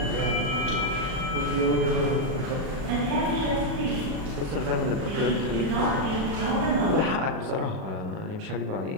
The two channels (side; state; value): left; late; 37 ms